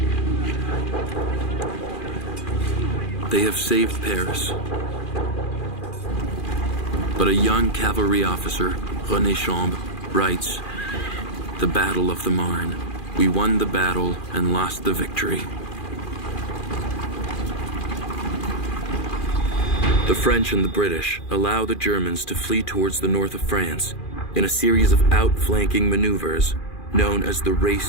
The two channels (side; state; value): right; late; 2.4 ms